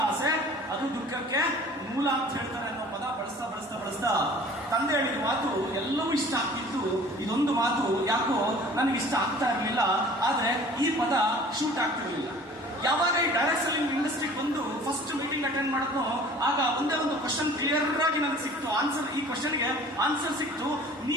ಆಸೆ ಅದು ದುಃಖಕ್ಕೆ ಮೂಲ ಅಂತ ಹೇಳ್ತಾರೆ ಅನ್ನೋ ಪದ ಬಳಸ್ತಾ ಬಳಸ್ತಾ ಬಳಸ್ತಾ ತಂದೆ ಹೇಳಿದ ಮಾತು ಎಲ್ಲವೂ ಇಷ್ಟ ಆಗ್ತಿತ್ತು. ಇದೊಂದು ಮಾತು ಯಾಕೋ ನನಗೆ ಇಷ್ಟ ಆಗ್ತಾ ಇರಲಿಲ್ಲ, ಆದ್ರೆ ಈ ಪದ ಶೂಟ್ ಆಗ್ತಿರ್ಲಿಲ್ಲ. ಯಾವಾಗ ಈ ಡೈರೆಕ್ಟ್ ಸೆಲ್ಲಿಂಗ್ ಇಂಡಸ್ಟ್ರಿಗೆ ಬಂದು ಫಸ್ಟ್ ಮೀಟಿಂಗ್ ಅಟೆಂಡ್ ಮಾಡಿದ್ನೋ, ಆಗ ಒಂದೇ ಒಂದು ಕ್ವಶನ್ ಕ್ಲಿಯರ್ ಆಗಿ ನನಗೆ ಸಿಕ್ತು. ಆನ್ಸರ್, ಈ ಕ್ವಶನ್ಗೆ ಆನ್ಸರ್ ಸಿಕ್ತು.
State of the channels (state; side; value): normal; both; correlation 0.47